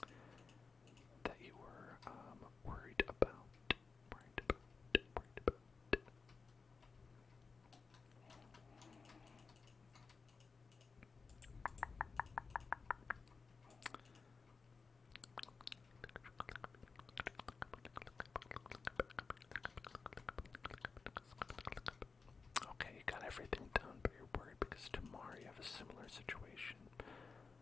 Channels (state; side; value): quieter; right; 4.7 dB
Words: that you were worried about. Okay, you got everything done, but you're worried because tomorrow you have a similar situation.